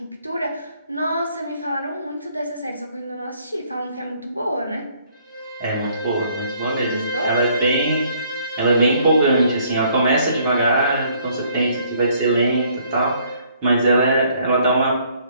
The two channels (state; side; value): inverted; both; correlation -0.64